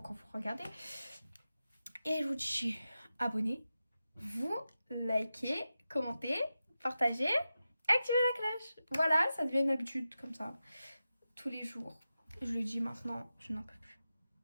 vous regardez. Et je vous dis abonnez-vous, likez, commentez, partagez, activez la cloche. Voilà, ça devient une habitude comme ça. Tous les jours. Je le dis maintenant, je n'en peux plus.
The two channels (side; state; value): both; inverted; correlation -0.92